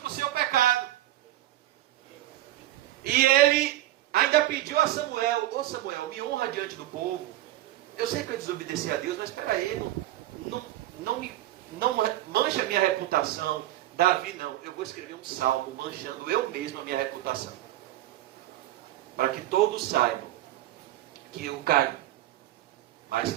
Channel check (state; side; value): quieter; left; 14.8 dB